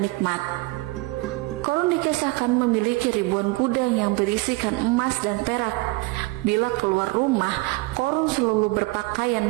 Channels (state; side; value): quieter; left; 23.2 dB